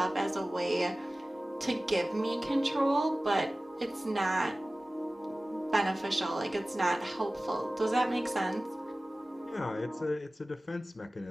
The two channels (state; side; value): normal; both; correlation 0.97